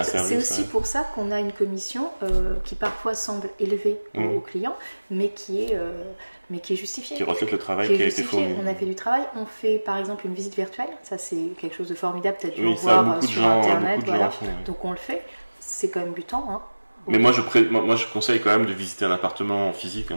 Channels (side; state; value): both; inverted; correlation -1.00